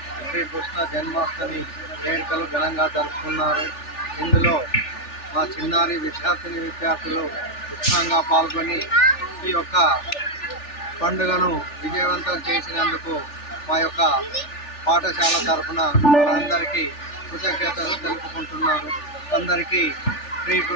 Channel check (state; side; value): late; right; 3.4 ms